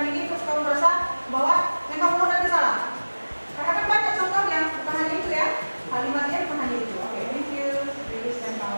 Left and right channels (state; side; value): inverted; both; correlation -1.00